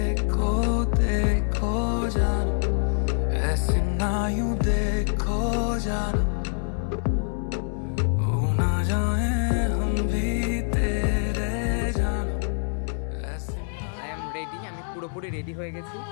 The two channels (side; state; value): right; silent; 61 dB below the other